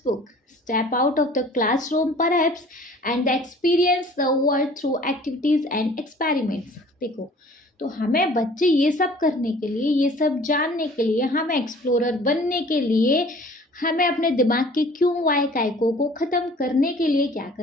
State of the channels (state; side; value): normal; both; correlation 0.50